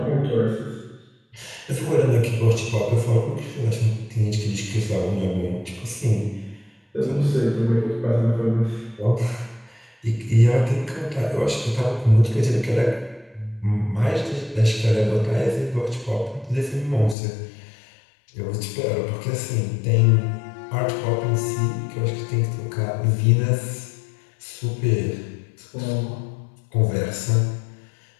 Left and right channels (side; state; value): right; drops out; at 17.2 s